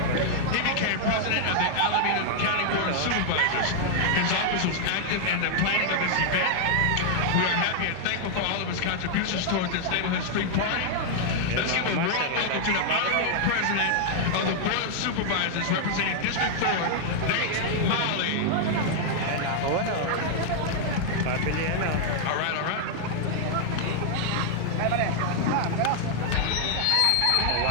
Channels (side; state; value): both; different; correlation -0.01